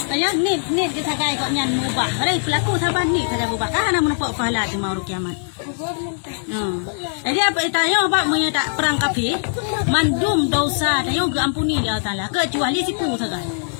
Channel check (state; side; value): silent; right; digital silence